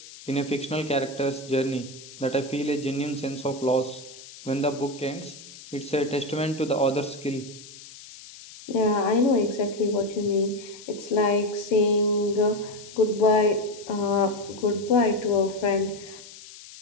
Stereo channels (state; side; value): noise; left; hiss, 17 dB below the sound